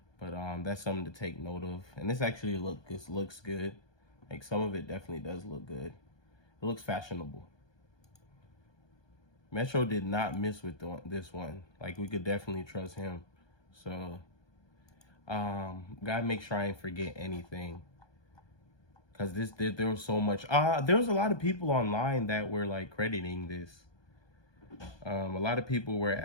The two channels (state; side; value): late; right; 1.2 ms